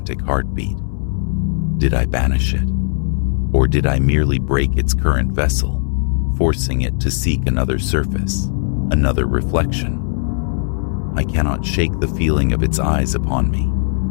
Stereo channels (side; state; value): right; silent; 62 dB below the other